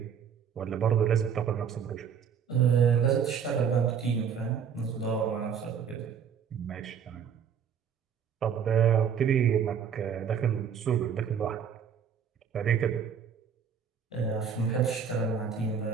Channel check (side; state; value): left; quieter; 7.3 dB